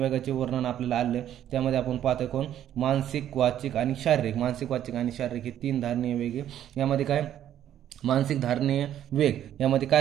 वर्णन आपल्याला आले. त्यामध्ये आपण पाहतोय कोण? मानसिक, वाचिक आणि शारीरिक. मानसिक, वाचिक आणि शारीरिक हे 3 धारणीय वेग. यामध्ये काय मानसिक धारणीय वेग यामध्ये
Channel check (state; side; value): quieter; left; 11.1 dB